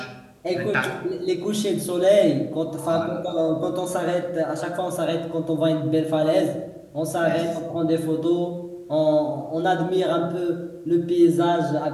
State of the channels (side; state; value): both; identical; correlation 1.00